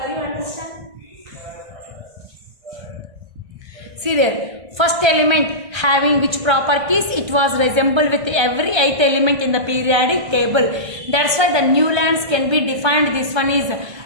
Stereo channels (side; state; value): left; late; 1.5 ms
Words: You understand? See there, first element having which properties? It was resemble with every 8th element in the periodic table. That's why the Newlands can be defined. This one is